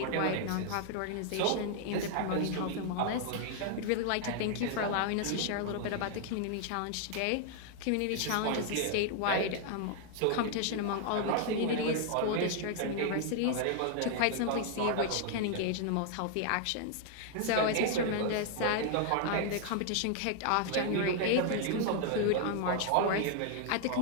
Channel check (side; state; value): both; different; correlation 0.00